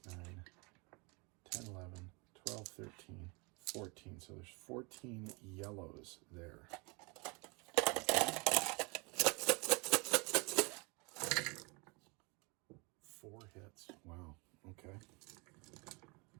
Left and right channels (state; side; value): quieter; left; 29.5 dB